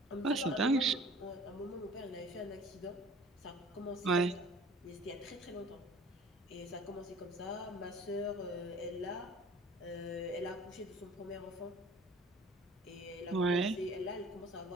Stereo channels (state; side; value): normal; both; correlation 0.48